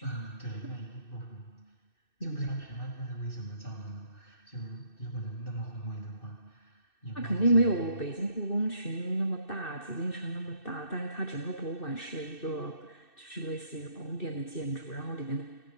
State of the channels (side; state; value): right; late; 2.6 ms